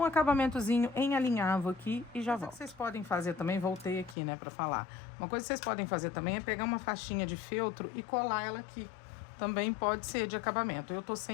um acabamentozinho em alinhavo aqui e já volto. Uma coisa que vocês podem fazer também, voltei aqui, né, pra falar. Uma coisa que vocês podem fazer também é pegar uma faixinha de feltro e colar ela aqui. Também pode ser de acabamento. Eu tô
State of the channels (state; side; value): drops out; right; at 4.2 s